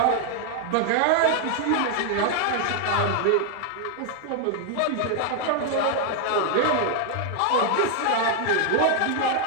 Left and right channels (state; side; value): different; both; correlation 0.00